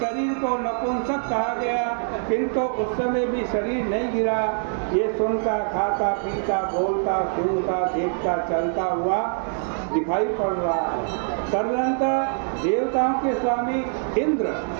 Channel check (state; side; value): silent; left; 63 dB below the other